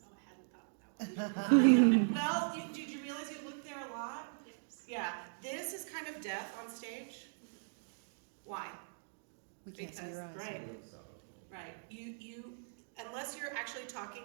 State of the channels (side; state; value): left; silent; digital silence